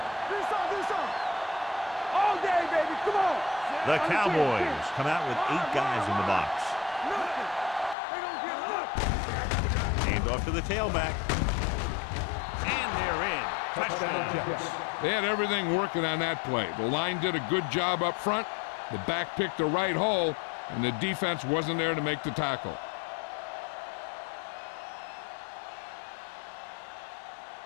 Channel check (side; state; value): right; drops out; at 8.0 s